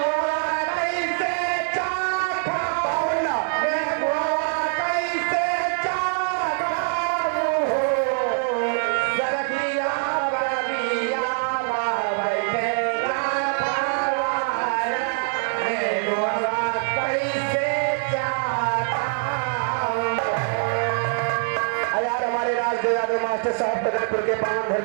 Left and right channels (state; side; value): silent; left; 63 dB below the other